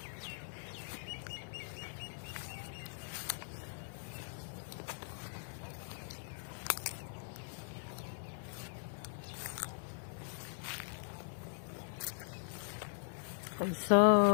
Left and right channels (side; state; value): right; silent; digital silence